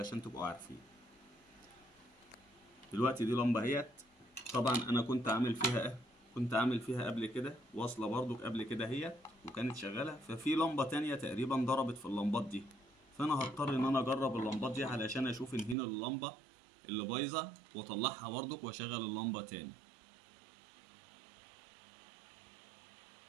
تبقوا عارفين. دلوقتي دي لمبة اهيت. طبعا انا كنت عامل فيها قبل كده واصلة برضو قبل كده هي، وكانت شغالة. ففي لمبة تانية تقريبا ضربت في اللمبات دي، فانا هضطر ان انا اجرب اللمبات دي علشان اشوف ان هنا اللمبة اللي بايظة واطلعها برضو واشغل اللمبة تاني.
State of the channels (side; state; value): left; drops out; at 15.8 s